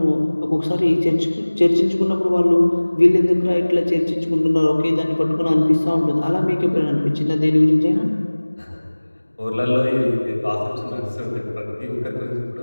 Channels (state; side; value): inverted; both; correlation -1.00